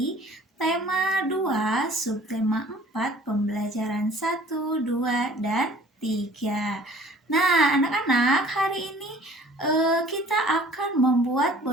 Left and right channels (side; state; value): both; normal; correlation 0.51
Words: tema 2, subtema 4, pembelajaran 1, 2, dan 3. Nah, anak-anak, hari ini kita akan membuat